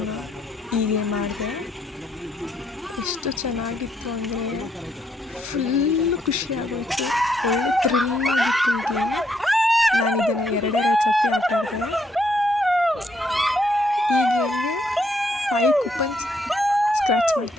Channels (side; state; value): both; normal; correlation 0.73